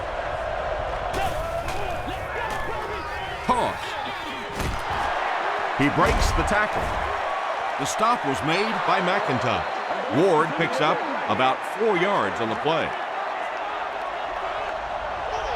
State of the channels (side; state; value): both; identical; correlation 1.00